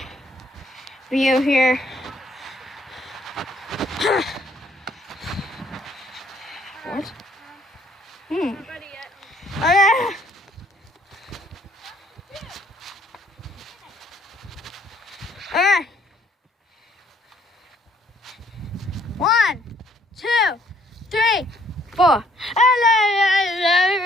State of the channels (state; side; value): normal; both; correlation 0.65